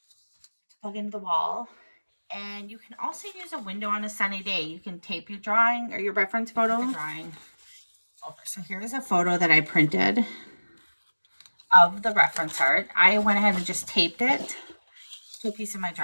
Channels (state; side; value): inverted; both; correlation -1.00